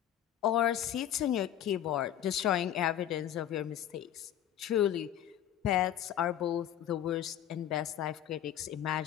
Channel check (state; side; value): quieter; right; 11.1 dB